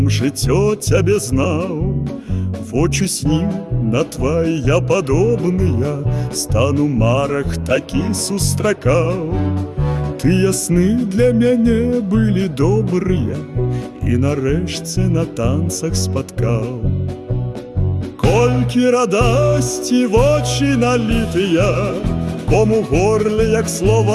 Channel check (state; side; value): identical; both; correlation 1.00